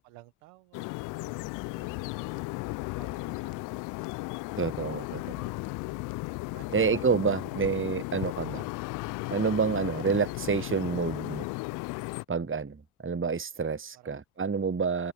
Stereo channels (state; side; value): normal; both; correlation 0.02